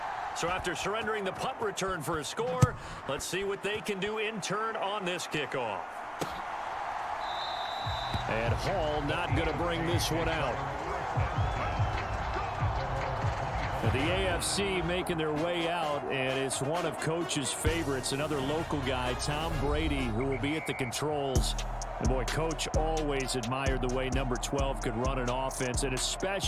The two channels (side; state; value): both; identical; correlation 1.00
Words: So after surrendering the punt return for a score, let's see what they can do in turn on this kickoff. And Hall not going to bring this one out. The AFC making their way out, and it's one of Coach's favorites, another local guy, Tom Brady, who will be at the controls. And boy, Coach always admired the way number 12 could run an offense, and